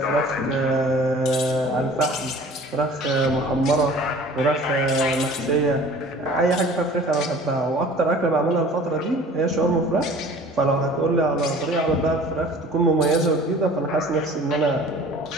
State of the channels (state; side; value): normal; both; correlation 0.46